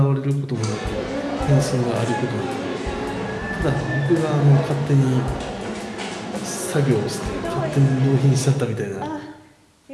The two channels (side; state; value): both; identical; correlation 1.00